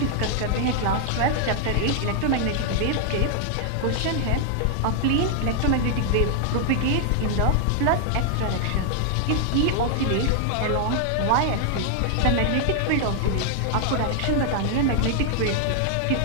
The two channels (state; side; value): different; both; correlation 0.00